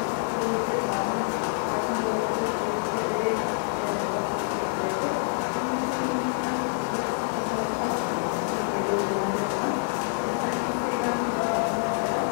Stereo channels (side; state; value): right; silent; 59 dB below the other